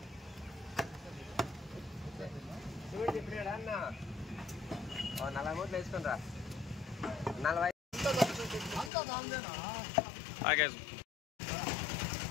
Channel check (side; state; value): right; drops out; at 8.9 s